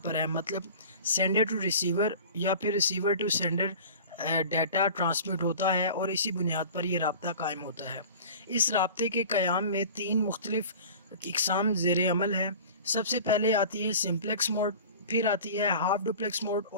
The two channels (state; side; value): inverted; both; correlation -0.40